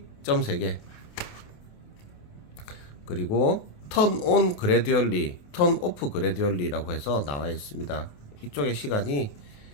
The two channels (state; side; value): late; right; 28 ms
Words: 점 3개. 그리고 턴 온 그래듀얼리, 턴 오프 그래듀얼리라고 해서 나와 있습니다. 이쪽에 시간이